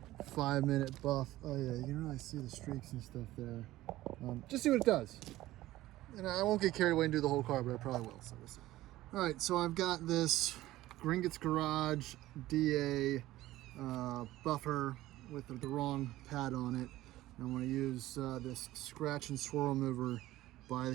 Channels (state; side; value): quieter; left; 16.1 dB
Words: 5-minute buff. Oh yeah, you can really see the streaks and stuff there. Just see what it does. And I won't get carried away and do the whole car, but I probably will, so we'll see. All right, so I've got this Gringotts Garage DA buffer with the wrong pad on it. And I'm going to use this scratch and swirl remover by